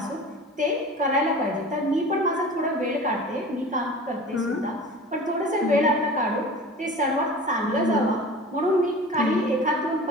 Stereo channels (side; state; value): both; normal; correlation 0.38